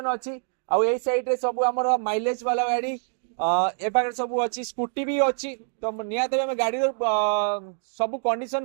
अछि। आ एई साइड रे सब हमर माइलेज वाला गाड़ी ए पाखे सब अच्छी स्कूटी भी अच्छी। तो निहत आम गाड़ी सब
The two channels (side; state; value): left; silent; 61 dB below the other